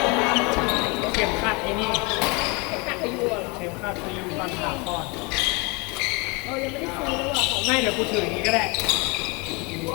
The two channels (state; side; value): quieter; right; 29.0 dB